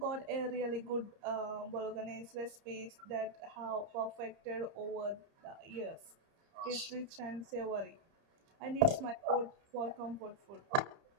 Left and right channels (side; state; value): left; late; 30 ms